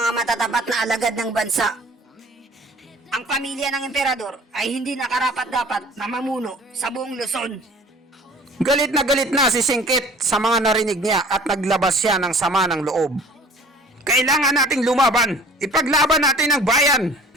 matatapat na alagad ng bansa. Ang pamilya ng emperador ay hindi nakarapat-dapat na mamuno sa buong Luzon. Galit na si Singkit sa mga narinig niya at naglabas siya ng sama ng loob. Kailangan nating lumaban. Ipaglaban natin ang bayan.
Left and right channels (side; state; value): both; normal; correlation 0.48